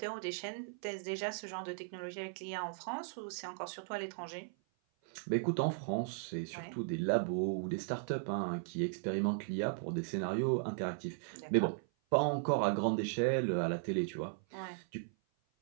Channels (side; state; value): left; silent; 53 dB below the other